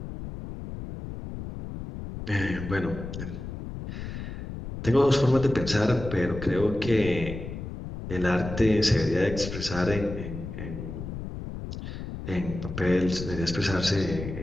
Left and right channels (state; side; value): noise; left; rumble, 8 dB below the sound